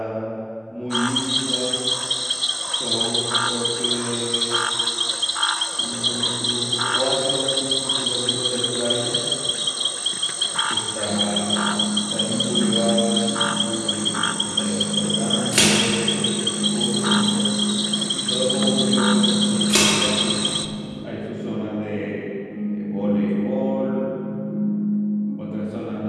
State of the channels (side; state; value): both; identical; correlation 1.00